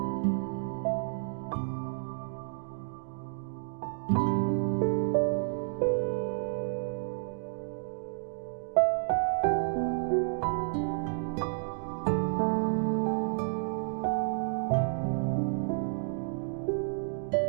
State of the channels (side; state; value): left; silent; digital silence